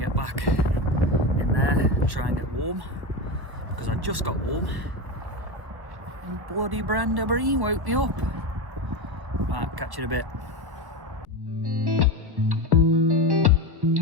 get back in there and try and get warm, because I just got warm and bloody Brenda Bream woke me up. Right, catch you in a bit.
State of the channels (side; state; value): left; late; 1.2 ms